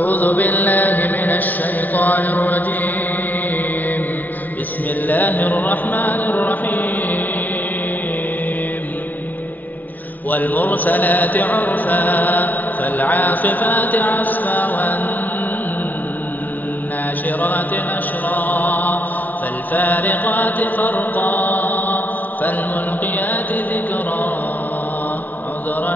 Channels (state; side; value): late; right; 0.086 ms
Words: بالله من الشيطان الرجيم. بسم الله الرحمن الرحيم. والمرسلات عرفا فالعاصفات عصفا والناشرات نشرا فالفارقات فرقا فالملقيات ذكرا